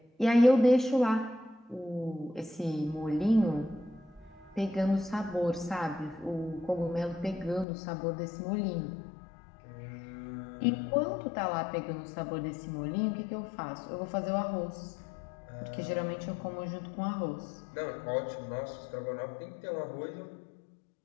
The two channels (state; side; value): drops out; right; at 7.7 s